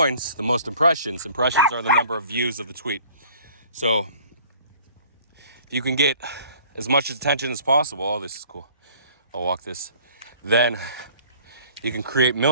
the most impressions. Impressions are the number of views of the tweet. So if you can get as much attention as possible, oh, this is cool, I'll walk this, then you can create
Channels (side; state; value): both; inverted; correlation -0.52